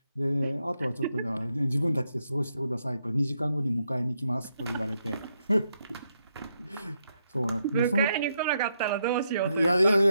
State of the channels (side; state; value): both; inverted; correlation -0.80